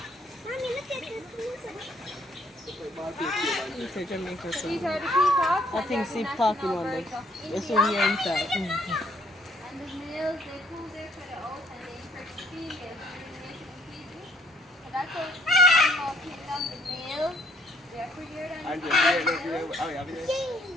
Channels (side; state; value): both; normal; correlation 0.64